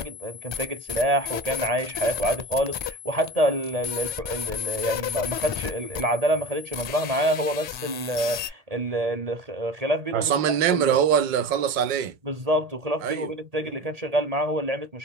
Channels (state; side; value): late; left; 1.2 ms